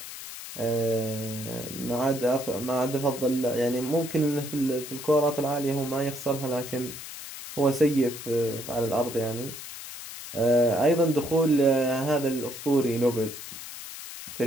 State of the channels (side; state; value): left; noise; hiss, 11 dB below the sound